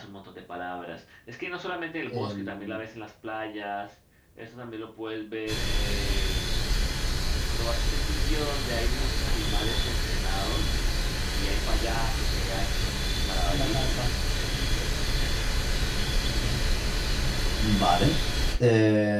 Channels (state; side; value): identical; both; correlation 1.00